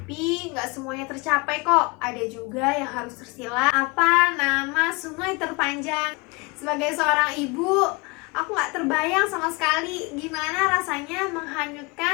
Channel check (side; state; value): right; quieter; 27.1 dB